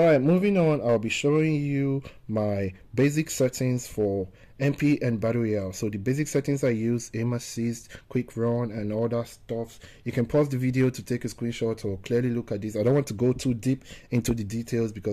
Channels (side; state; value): both; identical; correlation 1.00